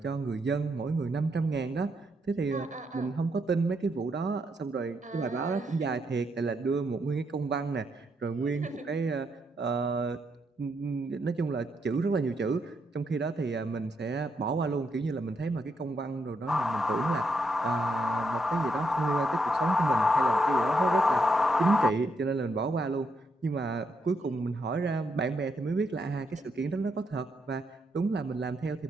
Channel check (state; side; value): normal; both; correlation 0.79